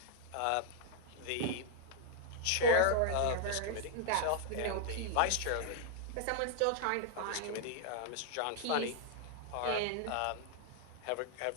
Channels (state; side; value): different; both; correlation -0.01